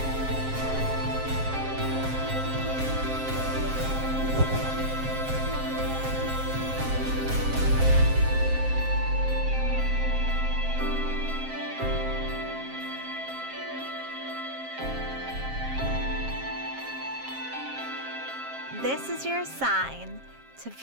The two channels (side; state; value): left; late; 7.5 ms